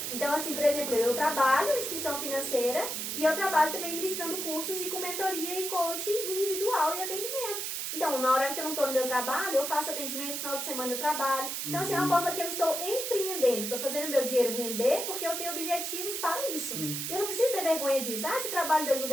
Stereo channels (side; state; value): right; noise; hiss, 3 dB below the sound